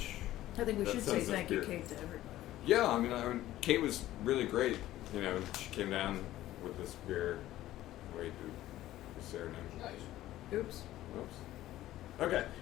I think we That should say sends us thank you, beer. Kate, to everybody. Yeah, I mean, Kate was really great. You know, she came down with this beer. Wait, is there a name? Nice. Oops. Whoops. Okay.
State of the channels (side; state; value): right; quieter; 14.6 dB